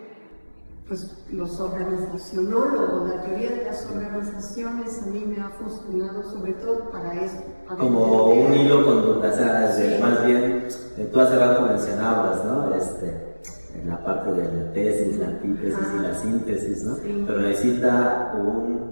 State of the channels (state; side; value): inverted; both; correlation -1.00